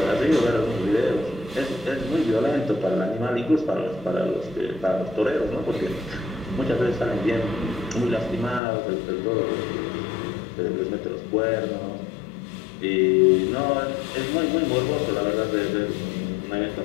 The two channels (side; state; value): right; drops out; at 8.6 s